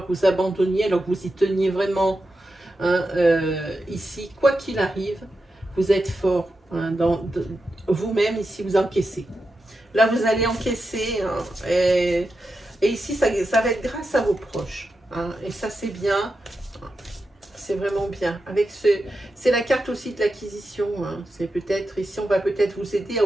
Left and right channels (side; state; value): both; normal; correlation 0.89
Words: que vous abandonniez alors que vous y teniez vraiment. Hein, ici, quoi qu'il arrive, vous êtes fort. Hein, vous-même, ici, vous encaissez. Là, vous allez encaisser. Hein, et ici, ça va être grâce à vos proches. Hein, et ça, c'est bien. C'est vraiment bien. C'est la carte aussi de l'acquisition. Hein, c'est peut-être, ici, on va peut-être vous aider à